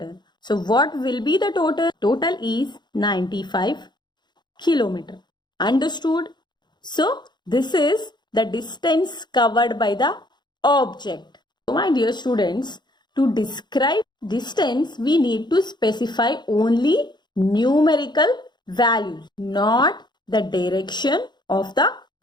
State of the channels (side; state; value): right; late; 0.21 ms